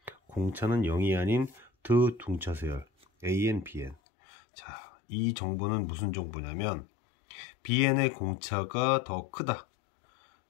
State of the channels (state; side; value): drops out; right; at 4.0 s